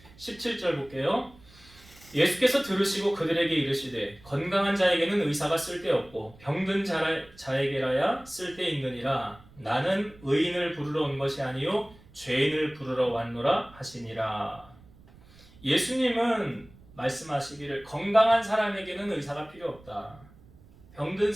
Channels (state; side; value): noise; right; rumble, 24 dB below the sound